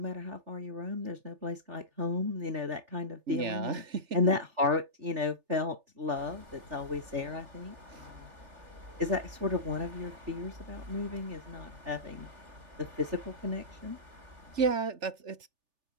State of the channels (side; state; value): left; late; 3.4 ms